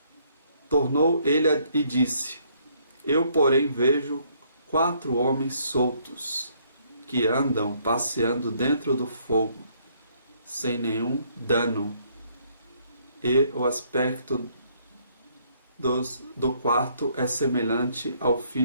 Tornou ele e disse: Eu, porém, vejo 4 homens soltos, que andam passeando dentro do fogo, sem nenhum dano, e o aspecto do quarto é semelhante ao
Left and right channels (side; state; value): both; inverted; correlation -0.67